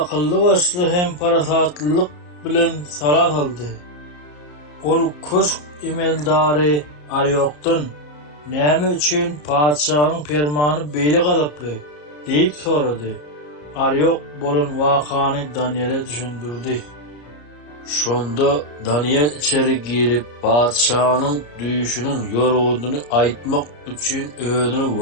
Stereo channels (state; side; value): late; right; 34 ms